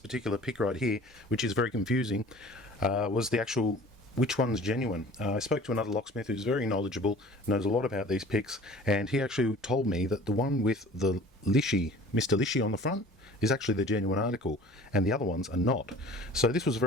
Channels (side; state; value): both; normal; correlation 0.46